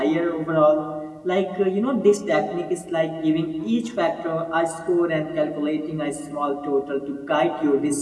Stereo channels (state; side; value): identical; both; correlation 1.00